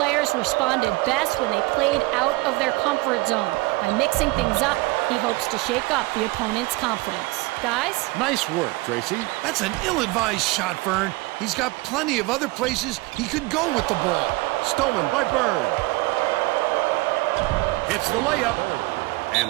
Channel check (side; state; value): left; quieter; 22.7 dB